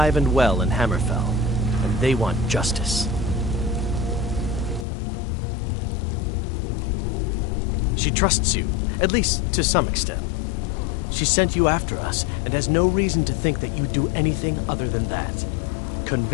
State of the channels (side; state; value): right; drops out; at 4.9 s